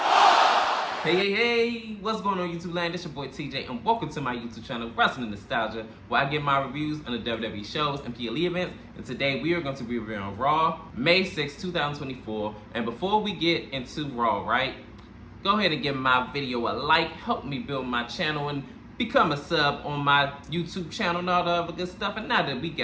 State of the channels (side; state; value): both; identical; correlation 1.00